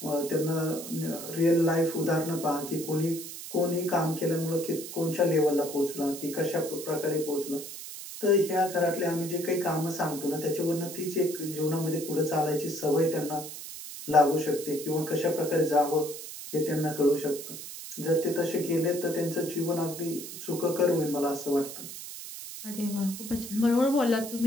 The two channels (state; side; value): noise; right; hiss, 10 dB below the sound